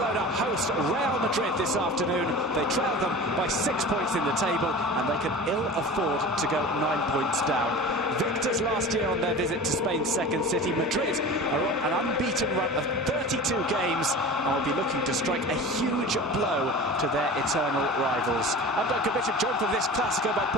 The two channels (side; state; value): both; normal; correlation 0.35